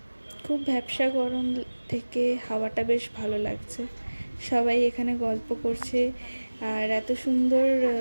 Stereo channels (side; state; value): both; inverted; correlation -1.00